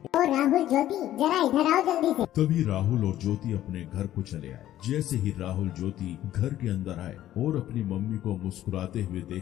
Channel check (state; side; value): quieter; right; 13.0 dB